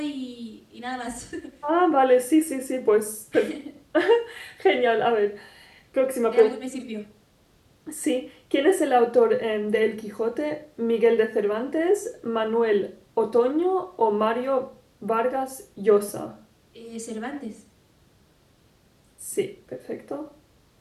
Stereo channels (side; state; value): both; identical; correlation 1.00